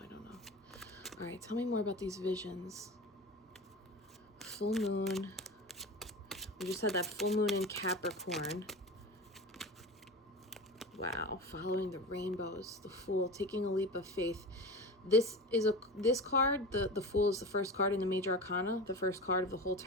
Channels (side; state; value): both; normal; correlation 0.29